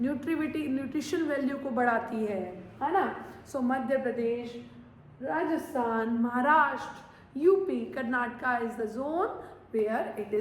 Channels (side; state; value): both; identical; correlation 1.00